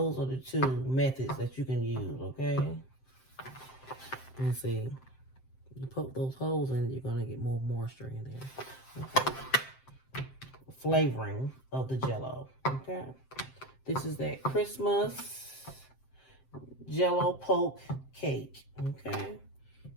are the two methods that you can use, okay? Let's see. You poke those holes in, you're going to get more moisture in there. Okay. Flavoring of the Jello, okay? This is that Christmas Jello poke cake, okay?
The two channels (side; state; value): right; late; 7.6 ms